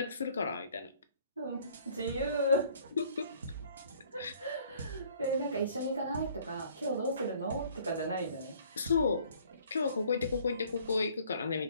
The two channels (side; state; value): both; inverted; correlation -0.57